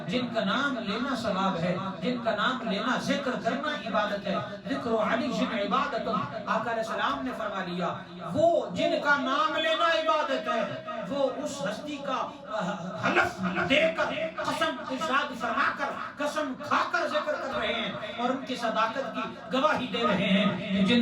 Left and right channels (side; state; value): both; identical; correlation 1.00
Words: جن کا نام لینا ثواب ہے، جن کا نام لینا ذکر کرنا عبادت ہے، ذکر علی جن عبادت، آقا علیہ السلام نے فرما لیا وہ جن کا نام لینا عبادت ہے وہ اس ہستی کا حلف دے کر قسم ارشاد فرما کر قسم کھا کر ذکر کر رہے ہیں اور ان کی صداقت کی گواہی دے رہے ہیں